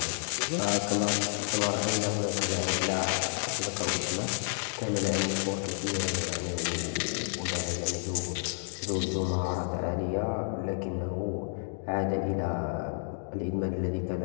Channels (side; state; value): right; silent; digital silence